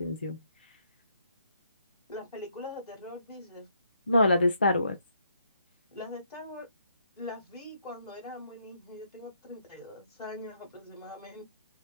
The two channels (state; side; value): inverted; both; correlation -0.73